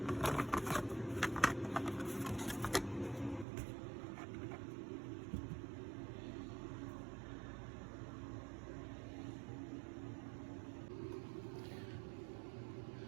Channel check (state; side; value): drops out; left; at 3.5 s